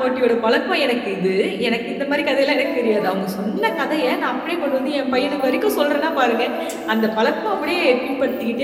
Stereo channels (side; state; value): both; identical; correlation 1.00